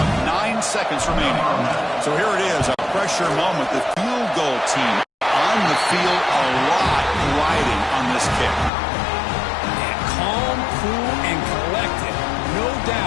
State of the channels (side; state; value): right; drops out; at 8.7 s